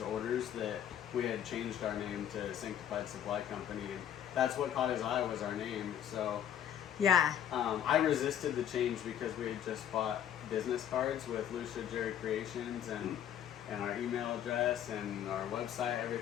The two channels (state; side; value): quieter; right; 9.9 dB